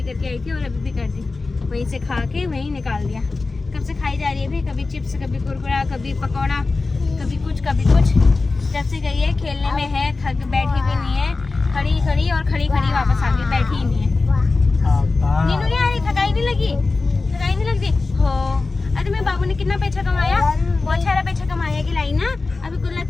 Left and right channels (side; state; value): right; quieter; 3.8 dB